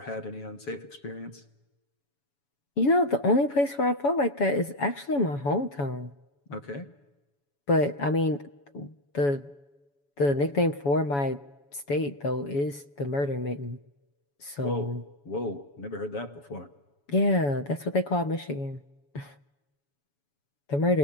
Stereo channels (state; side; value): late; right; 7.1 ms